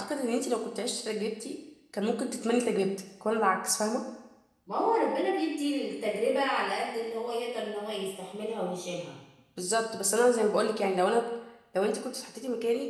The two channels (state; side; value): identical; both; correlation 1.00